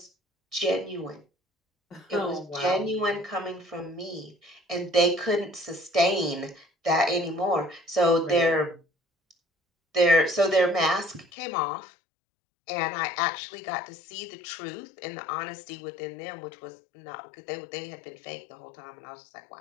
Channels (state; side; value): drops out; right; at 11.2 s